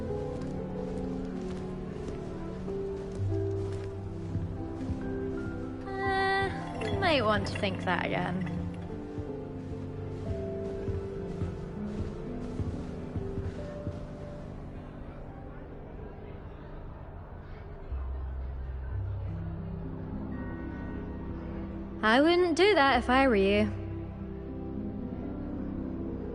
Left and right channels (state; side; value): identical; both; correlation 1.00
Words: Might want to think that again. I wouldn't do that if I were you.